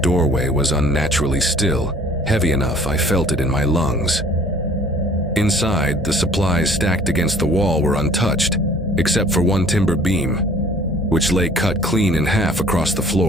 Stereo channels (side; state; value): both; normal; correlation 0.53